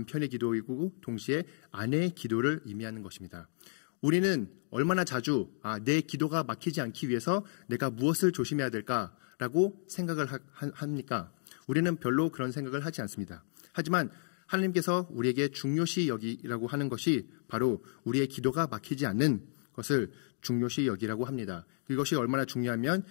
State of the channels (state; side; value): silent; right; digital silence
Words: 기도이고 동시에 아내의 기도를 의미하는 것입니다. 우리는 얼마나 자주 내 기도가 막히지 않기 위해서 내가 무엇을 조심해야 될까라고 생각을 합니까? 우리는 별로 그런 생각을 하지 않습니다. 하지만 하나님께서 우리에게 중요시 여기라고 하는 것이 바로 우리의 기도가 막히지 않는 것을 중요시 여기라고 합니다. 이것이 얼마나 중요하면